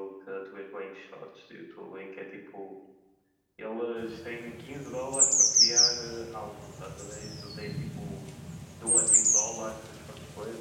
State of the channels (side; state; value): both; identical; correlation 1.00